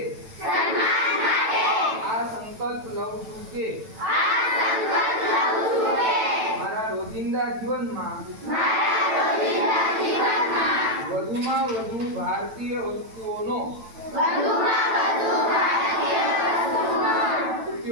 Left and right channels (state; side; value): late; left; 9.0 ms